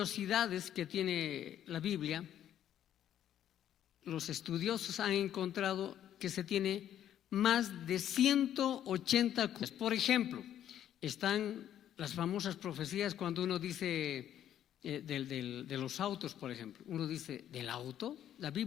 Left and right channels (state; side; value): quieter; right; 10.8 dB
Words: que tiene la Biblia, los estudiosos han encontrado que se tiene más de 180 cosas. Por ejemplo, están las famosas profecías cuando uno dice de los autos, por ejemplo. Uno dice: ¿del auto? ¿La